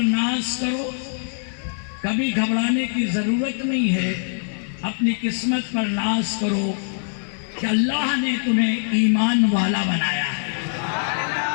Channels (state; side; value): silent; right; digital silence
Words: ناز کرو، کبھی گھبرانے کی ضرورت نہیں ہے، اپنی قسمت پر ناز کرو کہ اللہ نے تمہیں ایمان والا بنایا ہے۔